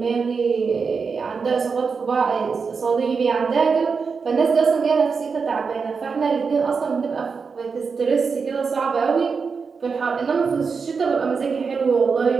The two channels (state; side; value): quieter; left; 5.3 dB